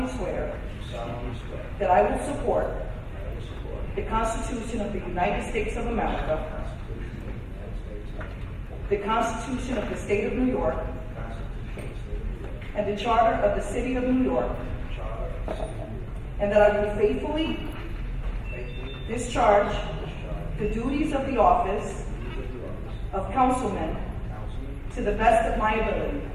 swear that I will support the Constitution of the United States of America, the Constitution of the State of New York, and the Charter of the City of New York, and that I will faithfully discharge the duties of the office of Councilman to the best of my ability.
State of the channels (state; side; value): identical; both; correlation 1.00